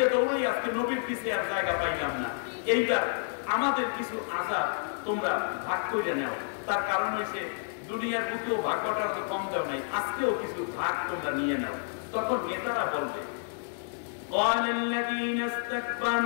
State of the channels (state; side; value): silent; right; digital silence